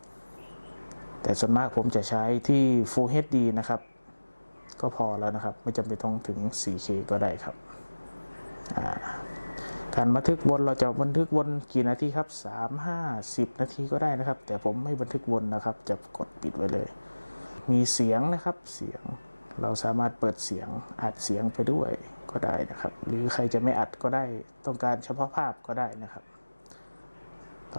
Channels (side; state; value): both; inverted; correlation -1.00